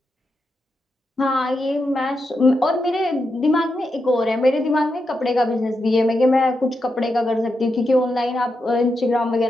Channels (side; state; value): both; normal; correlation 0.86